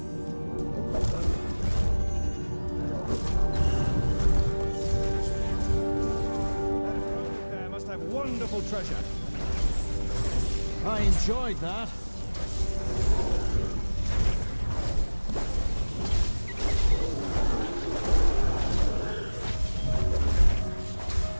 There must have wonderful treasure. I enjoyed that.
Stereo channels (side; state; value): both; inverted; correlation -1.00